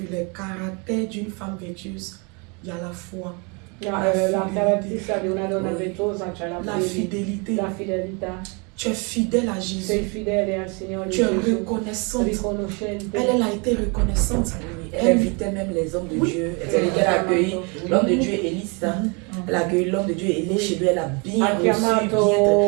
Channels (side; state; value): left; quieter; 32.1 dB